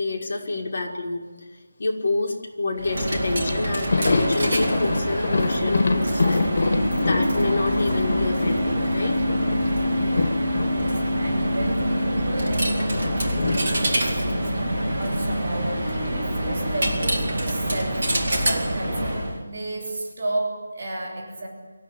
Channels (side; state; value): both; inverted; correlation -0.91